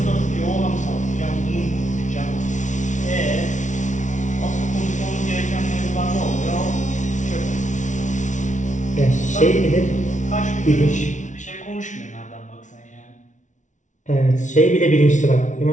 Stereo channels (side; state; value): right; late; 0.36 ms